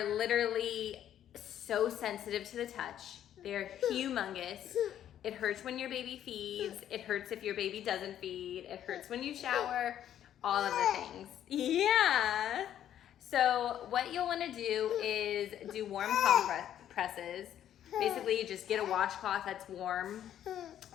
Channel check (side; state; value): right; quieter; 10.7 dB